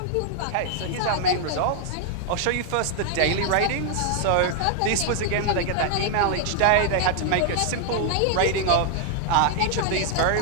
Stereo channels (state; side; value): different; both; correlation 0.00